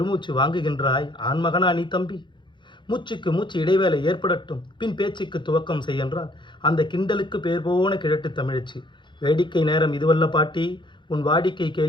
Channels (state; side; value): late; right; 0.23 ms